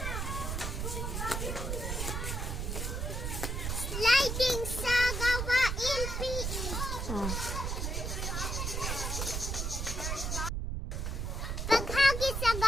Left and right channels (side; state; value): right; noise; rumble, 2 dB below the sound